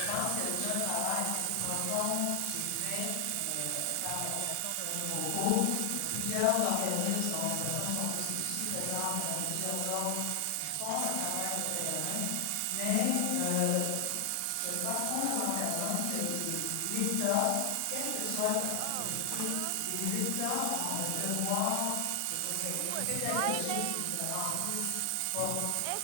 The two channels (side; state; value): both; different; correlation 0.00